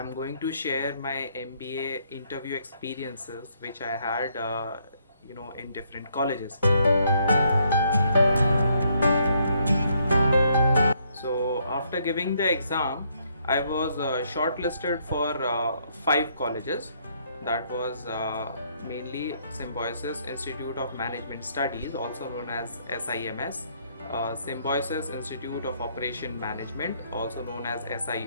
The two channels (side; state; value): both; inverted; correlation -0.71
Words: going to share my MBA interview experiences, which I had, in different colleges. So after giving the exam, I was shortlisted for five colleges. That was mainly Symbiosis Institute of Management Studies, also known as SIMS, Symbiosis Institute of Operation Management, also known as